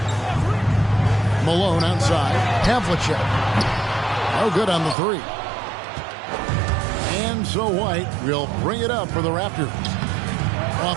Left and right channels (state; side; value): drops out; left; at 5.0 s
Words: Malone outside. Havlicek. No good on the 3. And so White will bring it up for the Raptors.